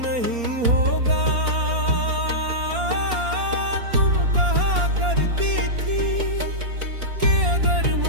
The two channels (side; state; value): left; late; 4.3 ms